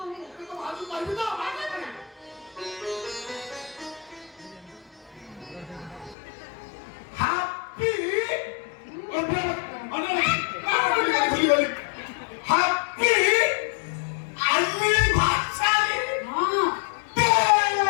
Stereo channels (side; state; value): right; drops out; at 6.2 s